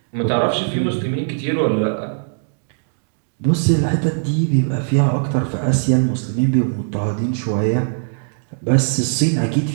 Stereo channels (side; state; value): left; silent; digital silence